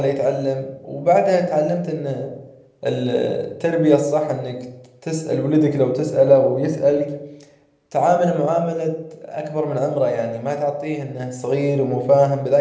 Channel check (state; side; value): identical; both; correlation 1.00